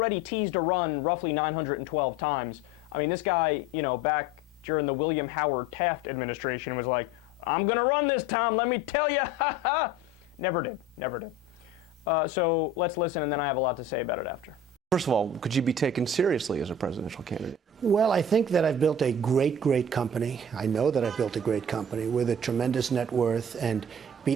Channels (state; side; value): normal; both; correlation 0.40